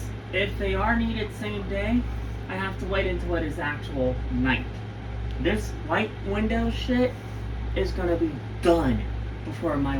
if they are needed same day, I have to wait until it is actual night. This white window shit is going to be done before my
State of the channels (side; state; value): both; identical; correlation 1.00